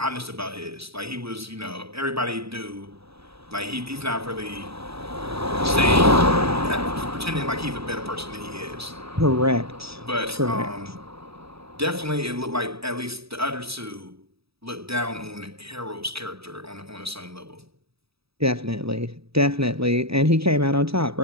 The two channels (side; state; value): left; late; 0.77 ms